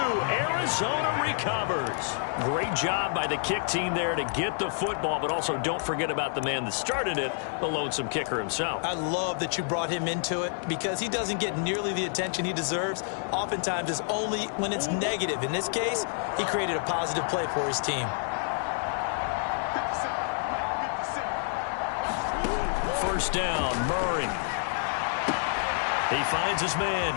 Arizona recovers. Great job by the kick team there to get the football, but also don't forget about the man that started it, the lonesome kicker himself. I love that you brought him into it because he doesn't get nearly the attention he deserves. Oftentimes it's only when it's negative. In this case, he created a positive play for his team. 1st down, Murray. He finds his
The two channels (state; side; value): silent; right; 59 dB below the other